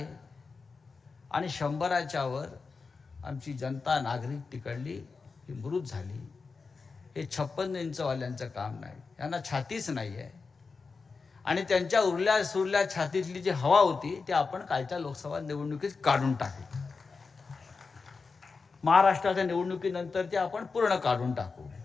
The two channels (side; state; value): right; quieter; 4.6 dB